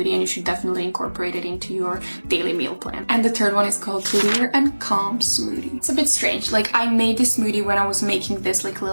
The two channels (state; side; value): inverted; both; correlation -1.00